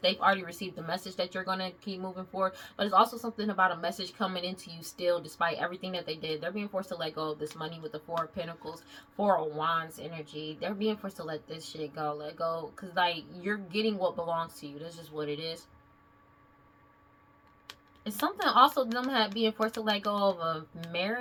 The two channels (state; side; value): identical; both; correlation 1.00